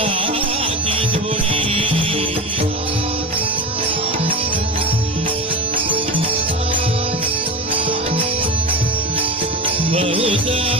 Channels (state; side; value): normal; both; correlation 0.25